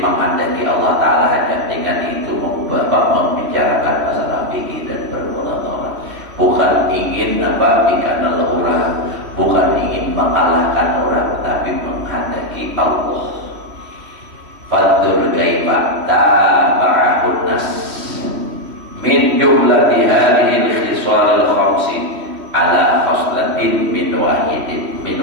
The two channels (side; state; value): left; late; 3.1 ms